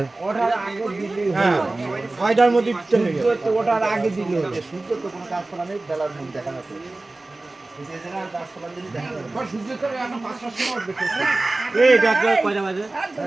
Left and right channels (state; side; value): quieter; left; 3.0 dB